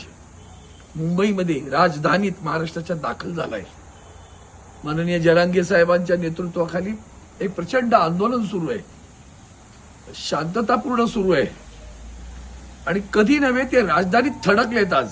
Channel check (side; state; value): both; identical; correlation 1.00